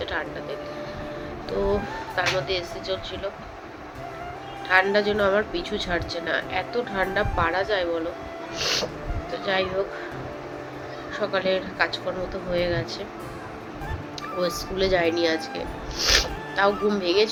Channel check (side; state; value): both; identical; correlation 1.00